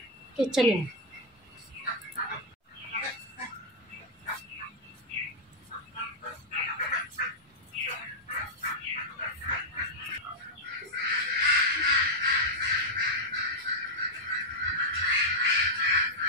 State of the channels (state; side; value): normal; both; correlation -0.04